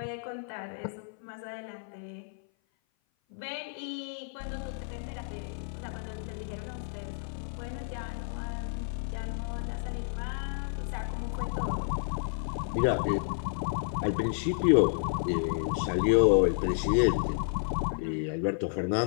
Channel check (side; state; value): right; silent; 56 dB below the other